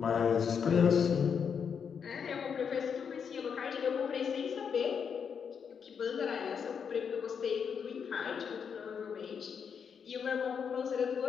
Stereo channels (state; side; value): quieter; right; 6.8 dB